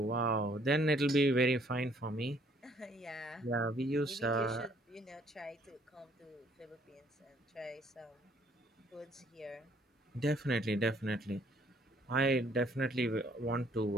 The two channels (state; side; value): normal; both; correlation 0.63